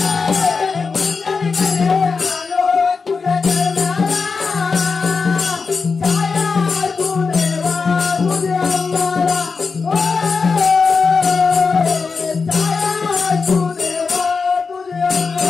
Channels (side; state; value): right; quieter; 4.8 dB